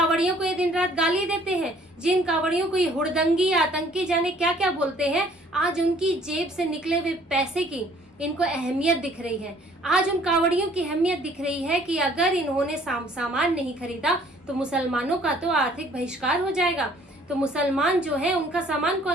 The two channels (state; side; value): normal; both; correlation 0.58